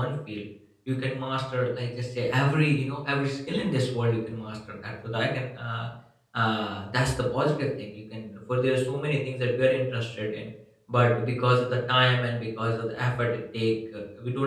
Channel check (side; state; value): both; identical; correlation 1.00